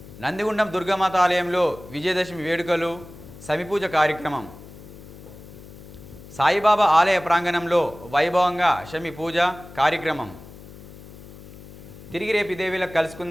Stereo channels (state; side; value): noise; left; hum, 17 dB below the sound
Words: నందిగుండం దుర్గామాత ఆలయంలో విజయదశమి వేడుకలు, సమిపూజ కార్యక్రమం. సాయిబాబా ఆలయ ప్రాంగణంలో వైభవంగా శమి పూజ కార్యక్రమం. తిరిగి రేపు ఇదే వేళకు